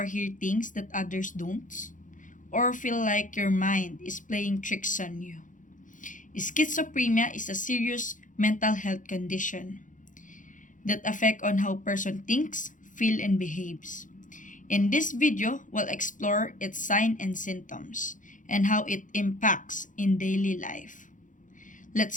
hear things that others don't? Or feel like your mind is playing tricks on you? Schizophrenia is a serious mental health condition that affect on how person thinks, feel, and behaves. In this video, we'll explore its signs and symptoms and how it impacts in daily life.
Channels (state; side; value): late; right; 0.38 ms